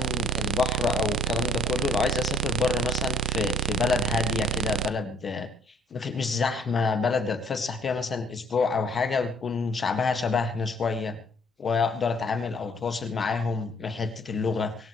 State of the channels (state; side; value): normal; both; correlation 0.60